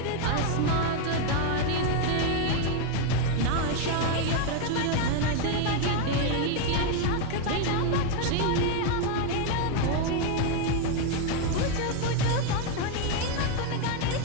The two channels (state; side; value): different; both; correlation 0.01